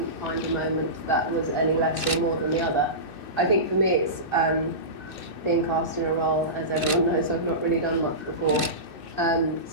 find a moment that was any less or more than the other. I think for me it's being cast in a role, as everyone knows, I've not really done much before.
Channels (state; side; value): late; right; 2.6 ms